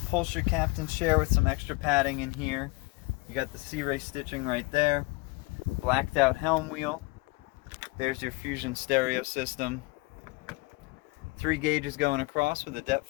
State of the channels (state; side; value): quieter; right; 25.5 dB